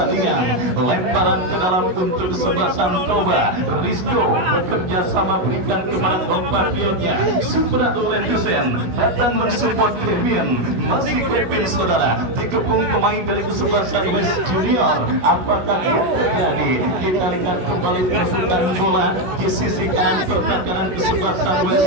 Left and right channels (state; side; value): late; left; 17 ms